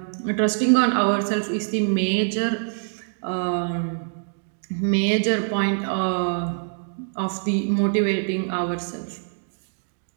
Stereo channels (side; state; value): left; silent; digital silence